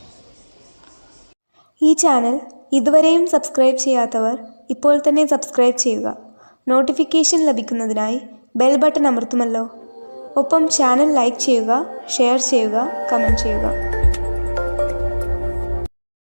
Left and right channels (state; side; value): inverted; both; correlation -1.00